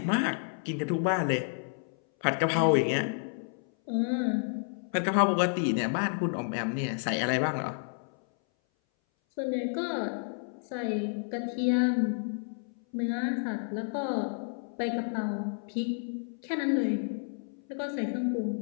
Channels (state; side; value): silent; right; 57 dB below the other